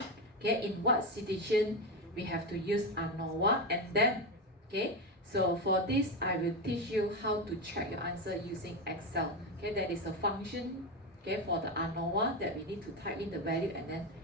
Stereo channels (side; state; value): both; normal; correlation 0.14